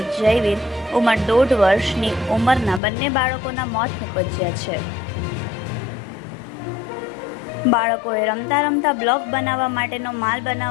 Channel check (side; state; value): right; drops out; at 2.8 s